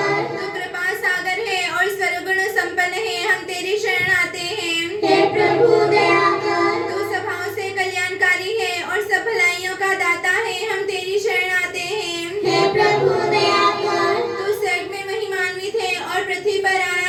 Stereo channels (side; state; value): both; identical; correlation 1.00